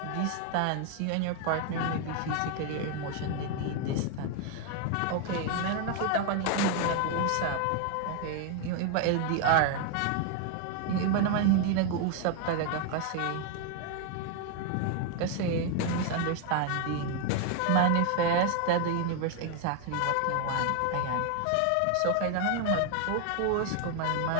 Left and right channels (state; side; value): different; both; correlation 0.01